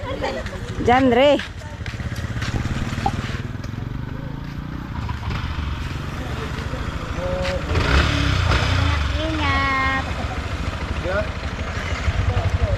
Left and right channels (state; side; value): identical; both; correlation 1.00